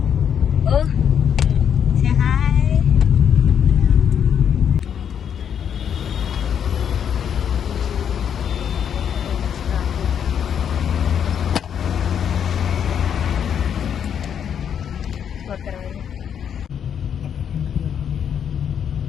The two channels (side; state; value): right; quieter; 8.3 dB